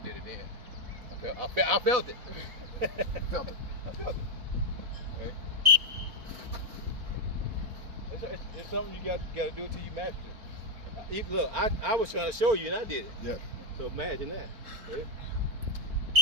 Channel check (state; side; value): late; left; 4.1 ms